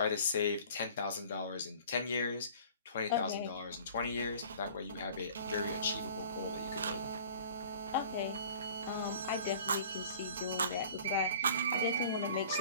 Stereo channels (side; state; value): both; inverted; correlation -0.46